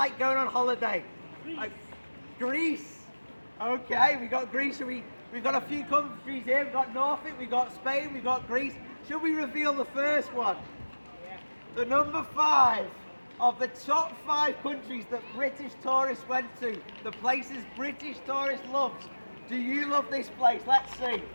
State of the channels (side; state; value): both; inverted; correlation -1.00